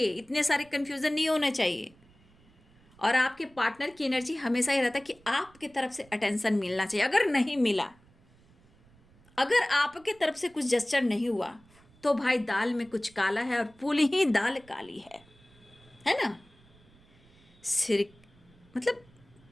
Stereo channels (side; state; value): right; noise; rumble, 29 dB below the sound